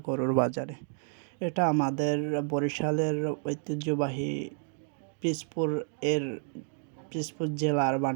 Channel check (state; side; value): silent; left; 58 dB below the other